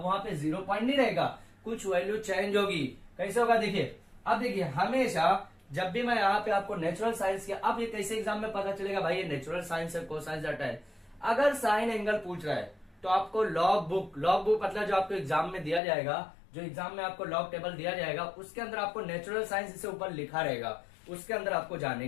वहां पे 0 पॉइंट नहीं रहेगा, कुछ वैल्यू चेंज होगी। कैसे होगा देखिए, अब देखिए हमेशा जब भी मैं यहाँ पे आपको नेचुरल साइंस किया, अब ये कैसे एग्जाम में पता चलेगा भाई ये नेचुरल साइंस है, कोसाइंस डाटा है। अगर साइन एंगल पूछ रहा है तो आपको लॉग बुक मतलब जो आपको एग्जाम में दिया जाएगा, जो एग्जाम में आपको लॉग टेबल दिया जाएगा उसके अंदर आपको नेचुरल साइंस इसे ऊपर लिखा रहेगा, उसके अंदर आपको जाने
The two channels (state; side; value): drops out; right; at 15.8 s